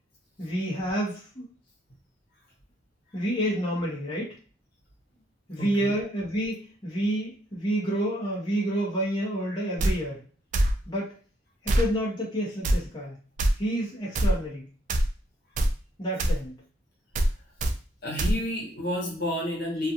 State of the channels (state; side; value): normal; both; correlation 0.71